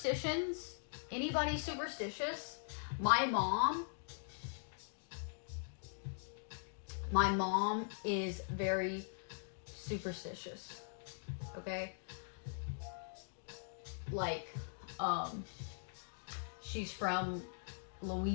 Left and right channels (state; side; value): silent; right; digital silence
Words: Anybody superstitious? My mom is very superstitious. Okay? Like, she's from